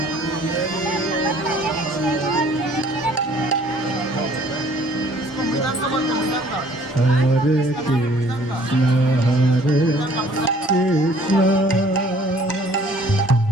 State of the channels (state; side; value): normal; both; correlation 0.56